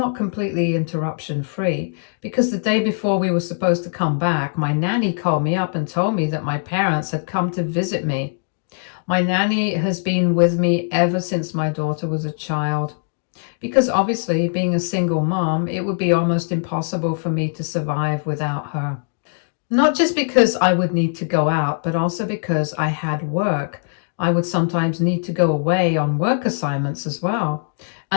completely interruption free, because the day before we were supposed to come back, my nanny called me up and told me that my parents had come to visit me. My nanny has been with me ever since my daughter was a child, because obviously being a single mom, it would be almost impossible for me to survive without her. Not just because I would need to go out, but also because I had work. I would sometimes need to go away on work assignments as well.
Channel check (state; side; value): silent; right; digital silence